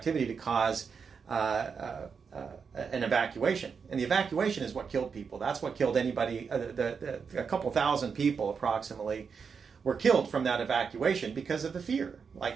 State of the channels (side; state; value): left; quieter; 5.9 dB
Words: to cause an evacuation. And the evacuation is what killed people. That's what killed anybody. A couple thousand people approximately were killed from that evacuation because of the fear, like